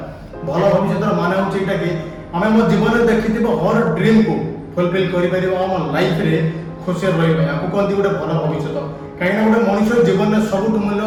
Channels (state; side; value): identical; both; correlation 1.00